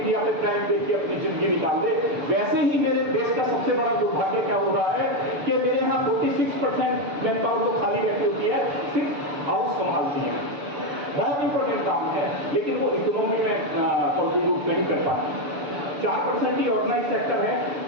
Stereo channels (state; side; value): late; left; 6.9 ms